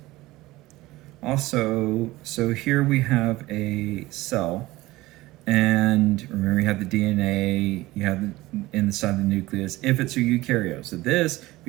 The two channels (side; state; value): left; quieter; 18.6 dB